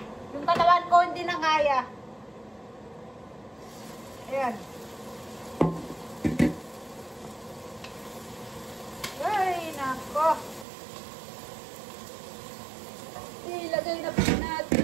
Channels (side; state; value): left; drops out; at 10.7 s